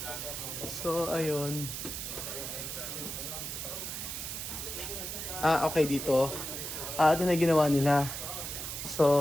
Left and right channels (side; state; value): right; noise; hiss, 5 dB below the sound